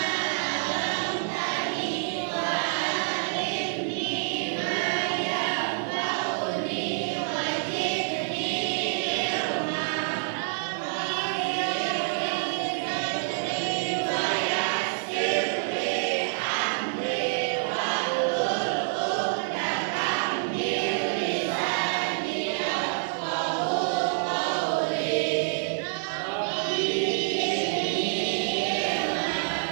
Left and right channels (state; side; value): silent; left; 60 dB below the other